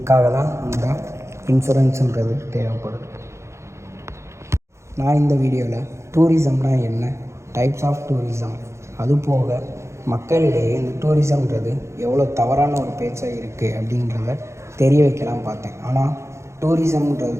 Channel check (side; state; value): left; late; 0.14 ms